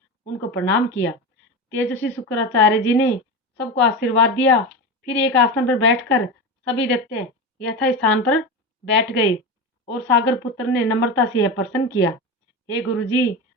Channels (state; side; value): normal; both; correlation 0.22